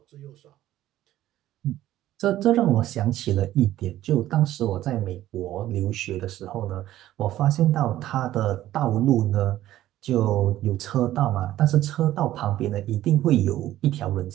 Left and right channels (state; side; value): quieter; left; 13.9 dB